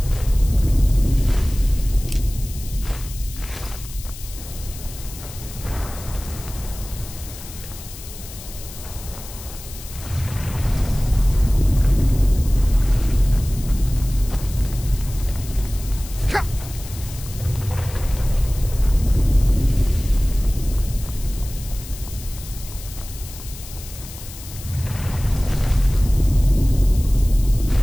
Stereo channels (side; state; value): left; noise; hiss, 15 dB below the sound